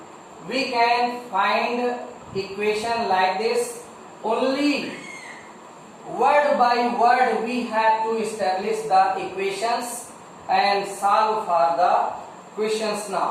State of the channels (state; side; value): identical; both; correlation 1.00